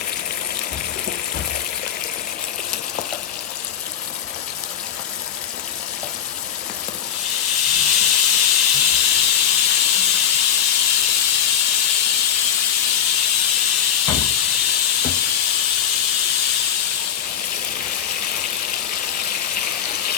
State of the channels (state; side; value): quieter; right; 9.1 dB